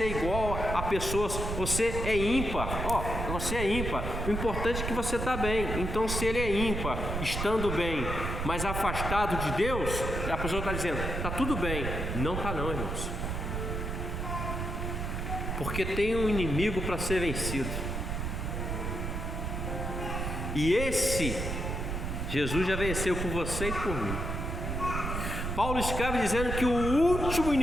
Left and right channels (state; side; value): noise; right; rumble, 3 dB below the sound